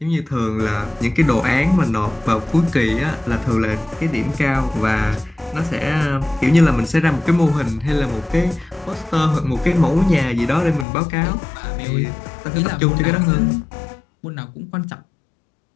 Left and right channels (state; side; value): drops out; right; at 10.9 s